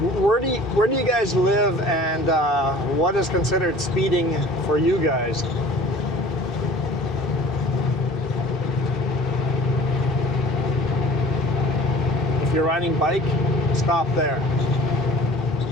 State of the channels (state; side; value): normal; both; correlation 0.46